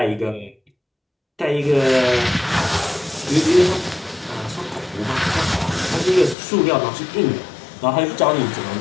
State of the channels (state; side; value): drops out; right; at 6.4 s